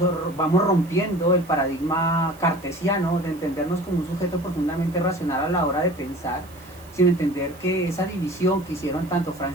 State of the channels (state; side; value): noise; right; hiss, 24 dB below the sound